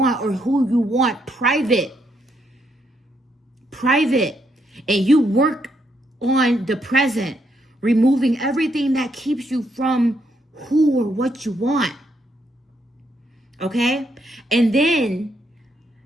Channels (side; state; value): both; normal; correlation 0.76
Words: or who you want private. And you work on the present, removing everything that keeps you from who or what you want. Okay? And then